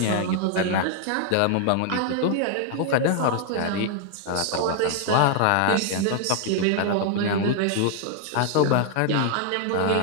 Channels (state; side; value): different; both; correlation 0.00